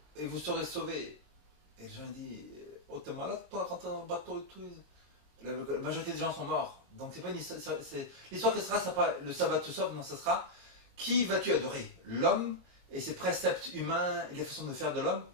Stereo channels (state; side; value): late; left; 22 ms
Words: et vous serez sauvés. Et les gens disent, oh t'es malade toi, rentrer dans le bateau et tout. La majorité des gens sont morts. Donc c'est pas une histoire. L'histoire que ce sera, pas le sabbat te sauve, non, ce sera qui vas-tu adorer? L'homme et ses préceptes humains et les façons de faire de l'homme,